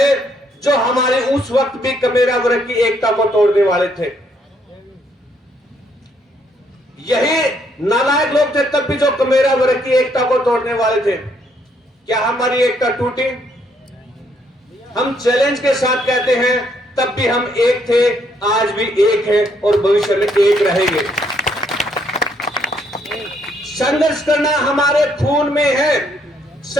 जो हमारे उस वक्त भी कमेरा वर्ग की एकता को तोड़ने वाले थे। यही नालायक लोग थे तब भी जो कमेरा वर्ग की एकता को तोड़ने वाले थे। क्या हमारी एकता टूटी? हम चैलेंज के साथ कहते हैं तब भी हम एक थे, आज भी एक है और भविष्य में एक रहेंगे। संघर्ष करना हमारे खून में है,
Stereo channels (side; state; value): both; normal; correlation 0.71